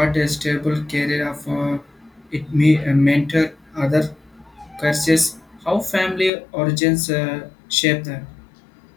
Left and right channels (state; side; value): drops out; right; at 6.3 s